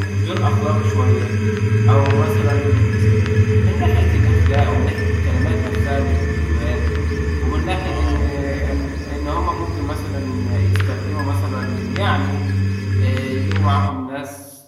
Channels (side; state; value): both; identical; correlation 1.00